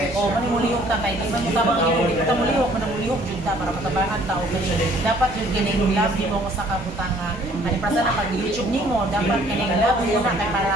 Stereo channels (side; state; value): left; noise; rumble, 18 dB below the sound